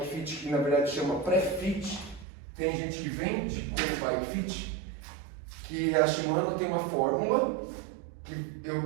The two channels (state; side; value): drops out; left; at 2.2 s